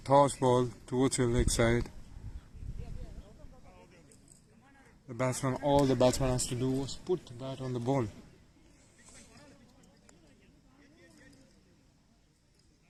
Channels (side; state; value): both; identical; correlation 1.00